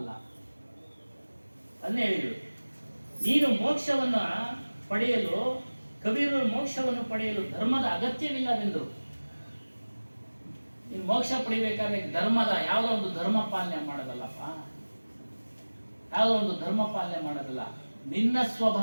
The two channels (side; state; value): both; inverted; correlation -1.00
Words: ಅದನ್ನೇ ಹೇಳಿದ್ರು, ನೀನು ಮೋಕ್ಷವನ್ನ ಪಡೆಯಲು, ಕಬೀರರು ಮೋಕ್ಷವನ್ನು ಪಡೆಯಲು ಧರ್ಮದ ಅಗತ್ಯವಿಲ್ಲವೆಂದರು. ನೀನು ಮೋಕ್ಷ ಪಡಿಬೇಕಾದ್ರೆ ಧರ್ಮದ ಯಾವುದೋ ಒಂದು ಧರ್ಮ ಪಾಲನೆ ಮಾಡೋದಲ್ಲಪ್ಪ, ಯಾವುದೋ ಒಂದು ಧರ್ಮ ಪಾಲನೆ ಮಾಡೋದಲ್ಲ. ನಿನ್ನ